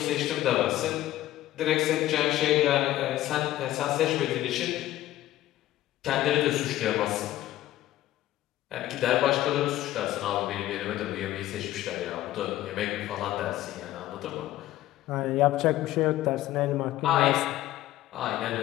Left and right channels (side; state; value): right; quieter; 14.7 dB